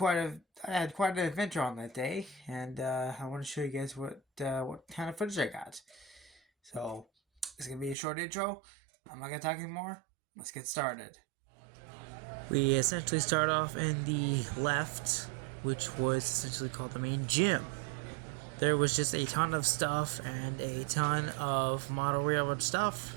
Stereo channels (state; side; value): drops out; left; at 8.0 s